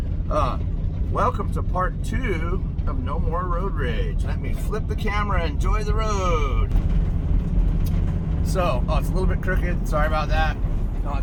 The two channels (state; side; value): identical; both; correlation 1.00